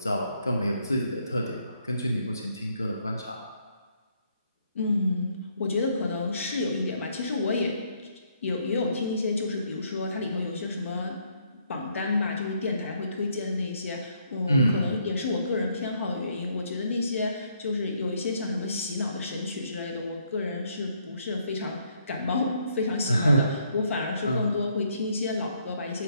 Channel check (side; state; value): both; inverted; correlation -0.71